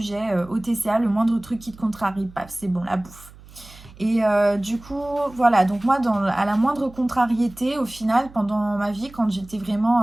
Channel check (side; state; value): right; noise; hum, 21 dB below the sound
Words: au TCA, le moindre truc qui te contrarie, paf, c'est bon, la bouffe. Et du coup, voilà, donc moi, à la moindre contrariété, au final, pendant ma vie, quand j'étais vraiment...